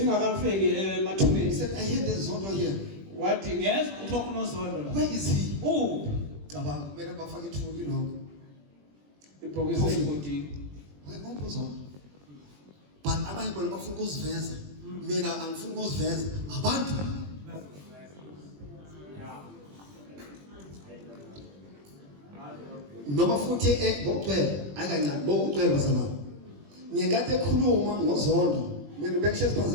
he emathumeni. said, I heard there's Zoto here. Wathi ngezwe ukuthi kunozondo la. Where is he? Cabanga Mera bafake ithuli lo. ibhokisi elibhodini. Wayebombo Zoto. But abanye bona bafuna ukuziveza. Mina angifuni ukuziveza. Abantu. Noma futhi ngocwele akancane bokucwele bazalwane. Ngiyekade ekhuluma ngozondo. Mina bekushiya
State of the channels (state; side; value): late; left; 21 ms